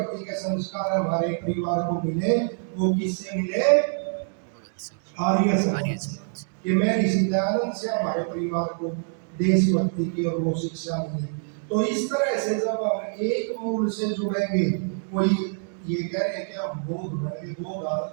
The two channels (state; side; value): silent; left; digital silence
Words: के संस्कार हमारे परिवार को मिले, वो किससे मिले? आर्य समाज। कि मैं ऋषि दयानंद से हमारे परिवार को देशभक्ति की और वो शिक्षा मिले। तो इस तरह से जब हम एक मूल से जुड़ेंगे, कोई ये कह रहे हैं कि हम बौद्ध बन